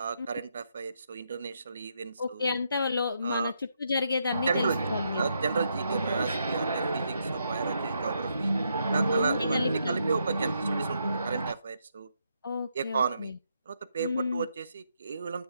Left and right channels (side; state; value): both; inverted; correlation -0.79